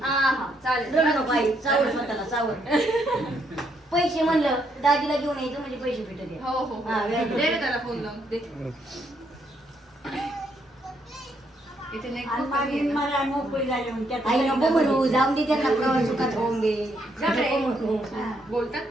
हा चालेल. रडू नको आई चावड स्वतःला चावड पैसे म्हणलं दाजीला घेऊन यायचं म्हणजे पैसे भेटत हो हो दे रे त्याला फोन लावून दे. इथे नाही खूप कमी आहे ना. आई नको म्हणू जाऊन दे त्यांना प्रवास सुखात होऊन दे जा रे. नको म्हणू बोलतात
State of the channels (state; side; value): normal; both; correlation 0.74